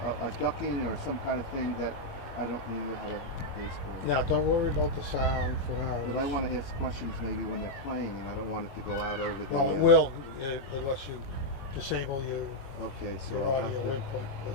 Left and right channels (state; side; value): late; right; 22 ms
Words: ducking or some kind of thing that I don't remember how to baseball. Yeah, don't worry about the sound for now. But I want to ask questions maybe when they're playing, and I don't want it to go out over the. Well, it will, unless you disable Okay, so your I'll have audio to, input. But